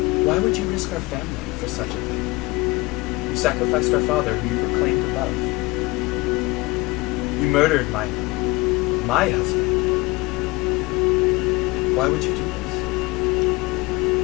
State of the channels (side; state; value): right; quieter; 22.2 dB